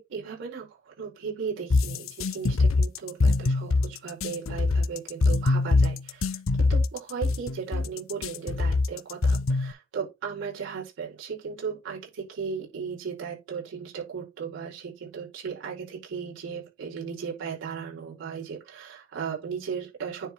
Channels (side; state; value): both; normal; correlation 0.71